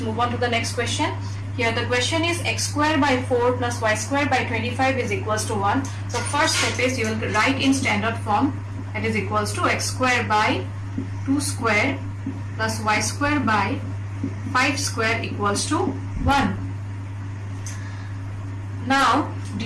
move on to the next question. Here the question is x square by 4 plus y square by 25 is equals to 1. So first step is you will write in standard form, that is equals to x square by 2 square plus y square by 5 square equals to 1. Now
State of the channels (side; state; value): both; identical; correlation 1.00